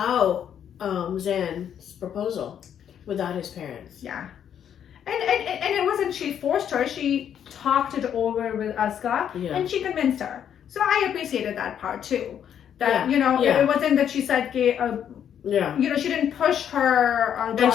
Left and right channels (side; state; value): right; quieter; 9.1 dB